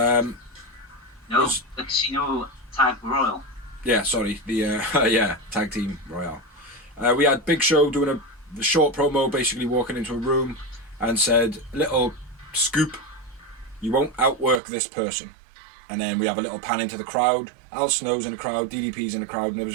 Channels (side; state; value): left; drops out; at 14.6 s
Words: Casino Tag Royal. Yeah, sorry, the Tag Team Royale. We had Big Show doing a short promo, basically walking into a room and said, little scoop, you won't outwork this person. And then we have a little pan into the crowd. Al Snow's in the crowd, DDP's in the crowd, and there was